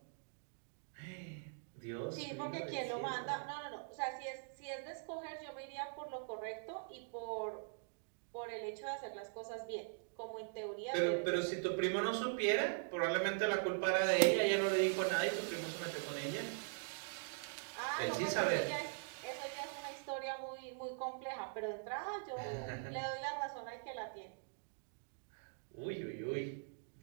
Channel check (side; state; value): left; silent; digital silence